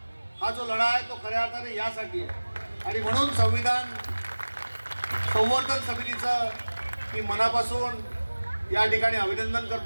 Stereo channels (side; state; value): both; inverted; correlation -1.00